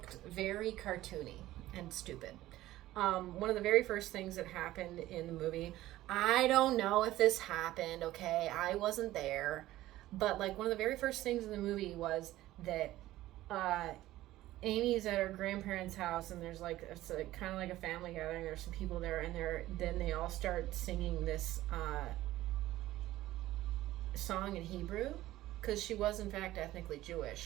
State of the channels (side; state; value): left; quieter; 15.6 dB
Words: very cartoony and stupid. One of the very first things that happened in the movie, I don't know if this happened, okay? I wasn't there. But, like, one of the very first things in the movie was that Amy's at her grandparents' house, and there's, like, it's kind of like a family gathering. There's some people there, and then they all start singing this song in Hebrew, because she was, in fact, ethnically